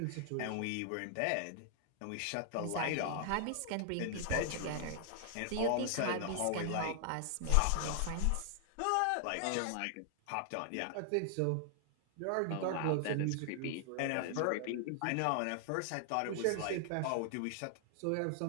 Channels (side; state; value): both; different; correlation 0.00